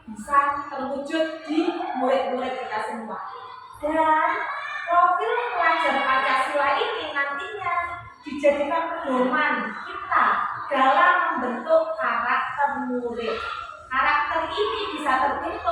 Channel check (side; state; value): both; identical; correlation 1.00